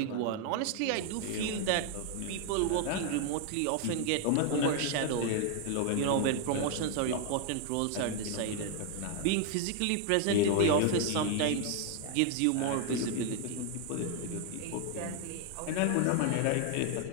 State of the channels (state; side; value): different; both; correlation 0.00